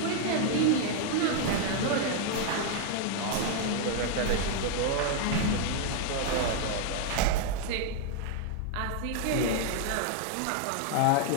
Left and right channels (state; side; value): different; both; correlation 0.00